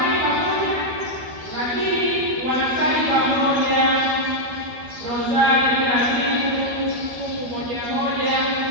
pamoja, lakini wanasali pamoja rozari kila siku, fungu moja moja,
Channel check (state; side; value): late; left; 12 ms